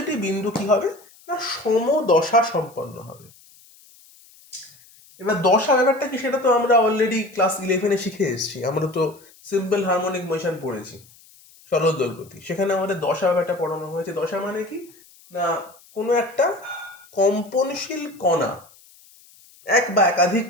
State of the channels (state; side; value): noise; left; hiss, 26 dB below the sound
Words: বিন্দু কি হবে না, সমদশা সম্পন্ন হবে। এবার দশা ব্যাপারটা কি, সেটা তো আমরা অলরেডি ক্লাস 11-এ শিখে এসেছি। আমরা তো সিম্পল হারমোনিক মোশন পড়েছি, সরল দোলগতি। সেখানে আমাদের দশা ব্যাপারটা পড়ানো হয়েছে। দশা মানে কি না, কোনো একটা কম্পনশীল কণা, এক বা একাধিক